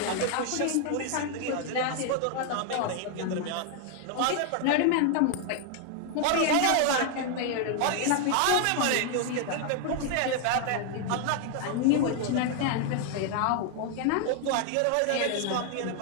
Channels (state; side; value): different; both; correlation 0.00